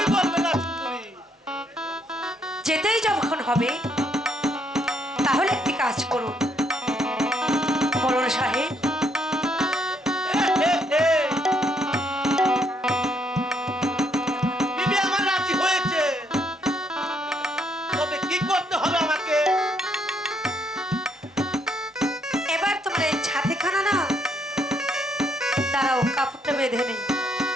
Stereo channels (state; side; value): normal; both; correlation 0.72